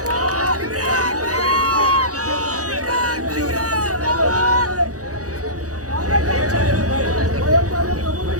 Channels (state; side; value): late; left; 0.67 ms